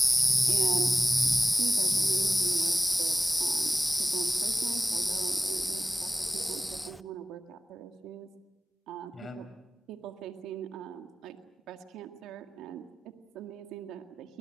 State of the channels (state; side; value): normal; both; correlation 0.97